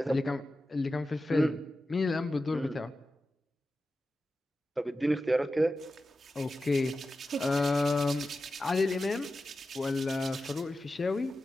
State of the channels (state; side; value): normal; both; correlation 0.93